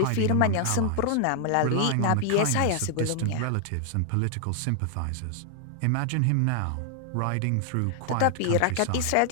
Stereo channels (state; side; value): different; both; correlation 0.00